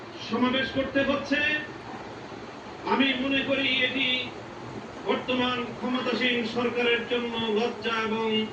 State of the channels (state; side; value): identical; both; correlation 1.00